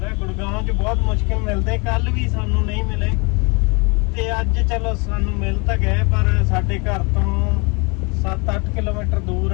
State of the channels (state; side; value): quieter; right; 30.8 dB